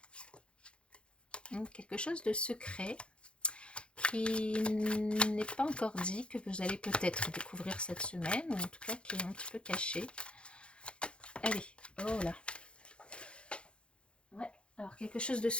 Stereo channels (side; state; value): right; late; 0.057 ms